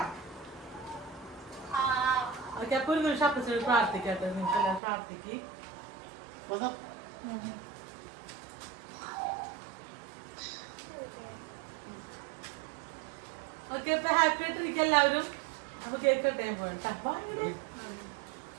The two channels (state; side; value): drops out; left; at 4.8 s